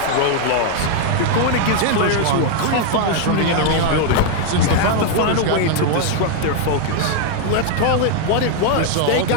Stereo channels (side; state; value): both; different; correlation 0.00